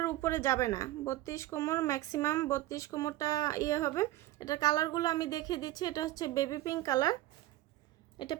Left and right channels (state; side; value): quieter; left; 16.0 dB